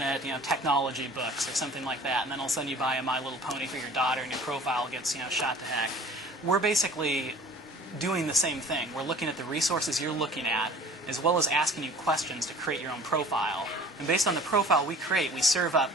at technology books or something like that, and then all of a sudden you buy a My Little Pony for your daughter, and your profile gets shot to heck. We're basically doing the same thing. We're looking at the resources you're looking at, as well as asking you questions to create your own profile. And based on the profile we create, we serve up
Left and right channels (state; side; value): normal; both; correlation 0.47